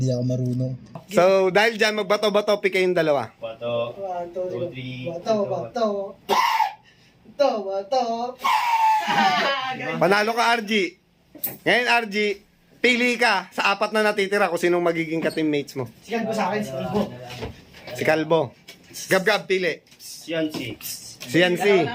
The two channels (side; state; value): both; identical; correlation 1.00